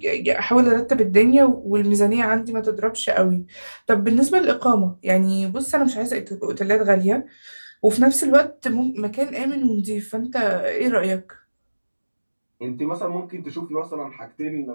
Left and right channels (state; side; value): inverted; both; correlation -1.00